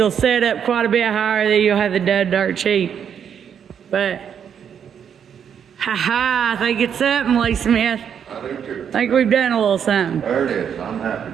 set up quite a bit higher, then you'll have the done dirt cheap. But, I think it's something, Lee Smith. I do too. I think we've done a little something. There it is. I'm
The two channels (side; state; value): left; quieter; 8.1 dB